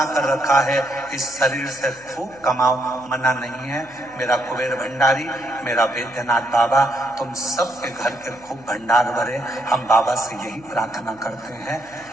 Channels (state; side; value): noise; left; hum, 25 dB below the sound